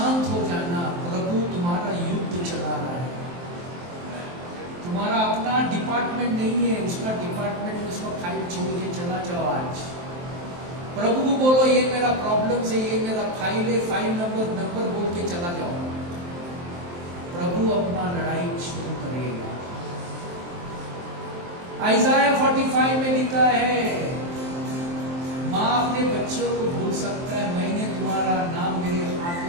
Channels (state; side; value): late; left; 23 ms